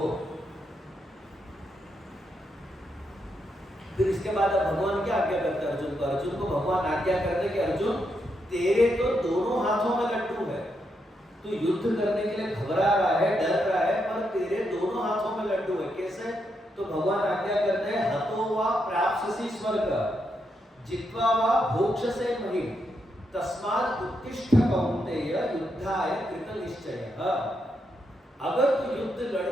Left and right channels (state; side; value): normal; both; correlation 0.81